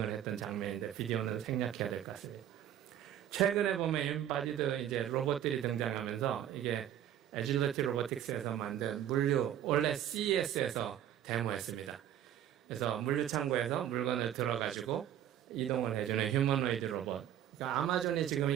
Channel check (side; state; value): left; quieter; 10.9 dB